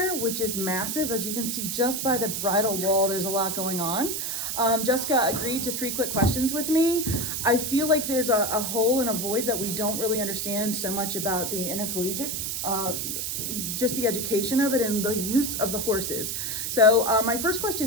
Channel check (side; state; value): right; noise; hiss, 2 dB below the sound